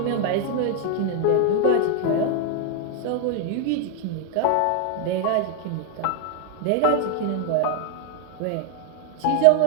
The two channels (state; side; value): different; both; correlation 0.00